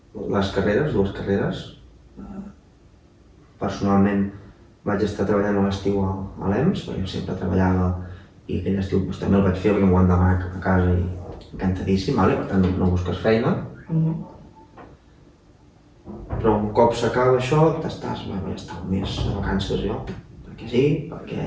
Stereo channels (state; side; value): identical; both; correlation 1.00